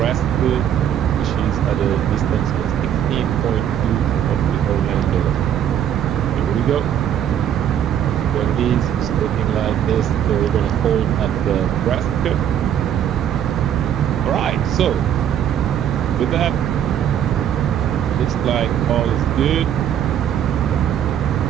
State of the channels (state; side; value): quieter; left; 9.8 dB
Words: which is at a distance of 16.2 of the Orlando. Here we go. There it is. It's looking like this. So we're going to hold at the Nebraska. All right. So with that, looks like all is good.